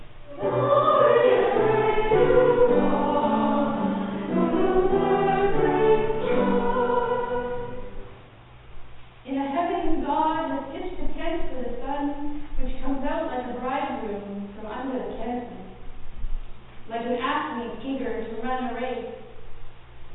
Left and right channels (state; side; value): identical; both; correlation 1.00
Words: In a heaven, God has pitched a tent for the sun, which comes out like a bridegroom from under the canopy, like an athlete eager to run a race.